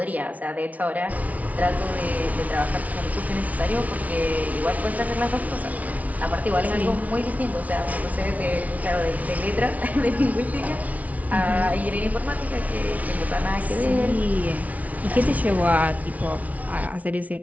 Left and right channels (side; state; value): left; late; 0.070 ms